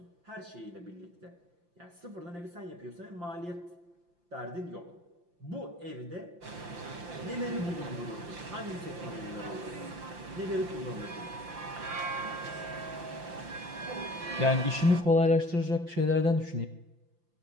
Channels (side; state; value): left; late; 5.8 ms